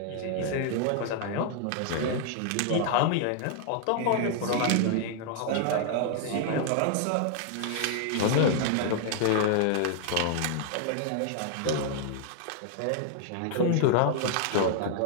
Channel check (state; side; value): different; both; correlation 0.00